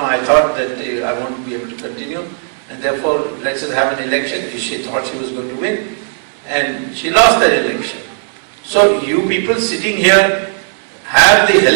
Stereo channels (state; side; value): silent; left; digital silence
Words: thought that I won't be able to continue. And therefore, let's just have an election. She thought she was going to win. And she lost that election. So you people sitting here have the